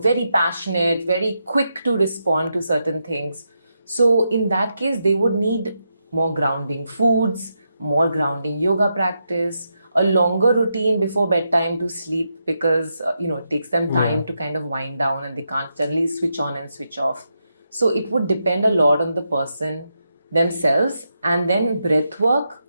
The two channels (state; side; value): inverted; both; correlation -0.84